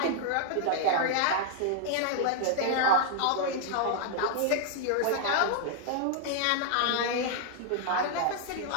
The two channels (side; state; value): both; different; correlation 0.00